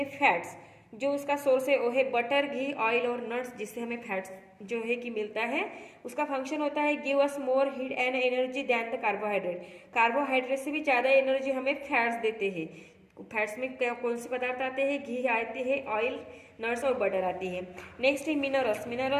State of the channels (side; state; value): both; identical; correlation 1.00